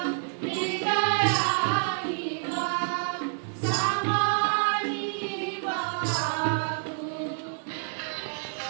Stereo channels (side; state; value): left; silent; 59 dB below the other